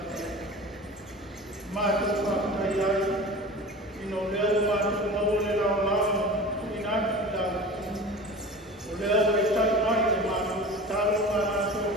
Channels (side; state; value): both; normal; correlation 0.36